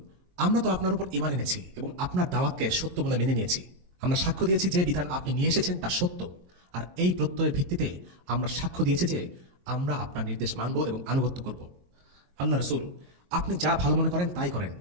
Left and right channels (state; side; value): late; left; 22 ms